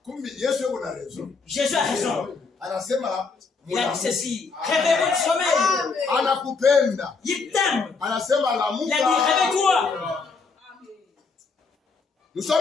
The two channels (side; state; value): right; quieter; 4.6 dB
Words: Kumbi Yesu yuko na raison. Jésus a raison. Anasema Il a dit ceci. Réveille-vous du sommeil. anakupenda. Il t'aime. Anasema Il a dit lamuka. réveille-toi. Nous